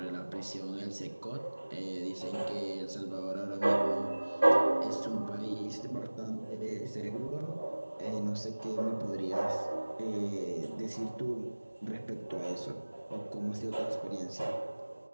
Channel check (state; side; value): inverted; both; correlation -1.00